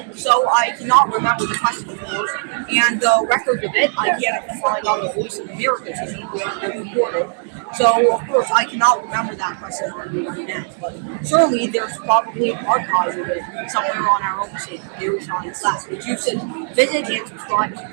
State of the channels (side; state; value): left; silent; 66 dB below the other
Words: So I cannot remember the question, of course, and the record of it I can't find on the Voice of America TV where it was recorded. So, of course, I cannot remember that question on the internet, but certainly there's probably archives of it somewhere on our own site, Very Science Class, which you should visit and subscribe